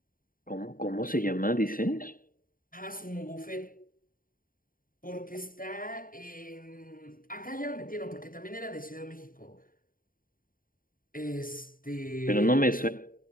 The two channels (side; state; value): right; late; 0.41 ms